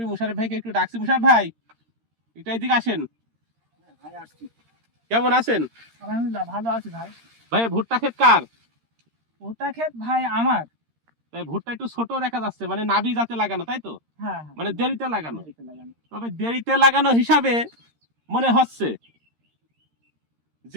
মুশারফ ভাইকে একটু ডাকছি। মুশারফ ভাই, একটু এদিকে আসেন। কেমন আছেন? আলহামদুলিল্লাহ ভালো আছি ভাই। ভাই ভুট্টা ক্ষেত কার? ভুট্টা ক্ষেত ভাই আমার। তাই ভুট্টা একটু ছোট দেখা যাচ্ছে, মানে নাবি জাতে লাগানো, তাই তো? হ্যাঁ, মানে দেরিতে লাগানো। দেরিতে লাগানো। তবে দেরিতে লাগানো হিসাবে মনে হচ্ছে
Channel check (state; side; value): late; left; 13 ms